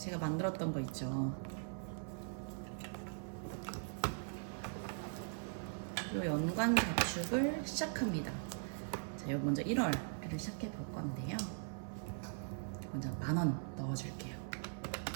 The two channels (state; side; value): silent; left; 51 dB below the other